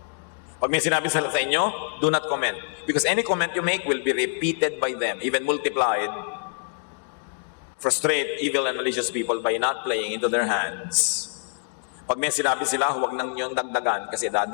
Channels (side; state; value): right; silent; digital silence